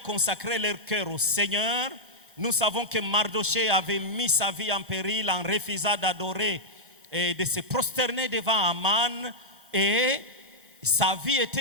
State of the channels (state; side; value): normal; both; correlation -0.05